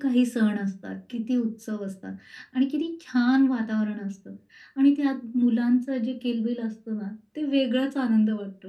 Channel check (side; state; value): both; identical; correlation 1.00